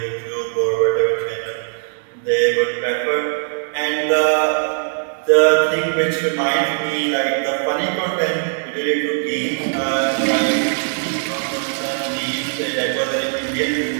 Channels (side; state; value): left; silent; digital silence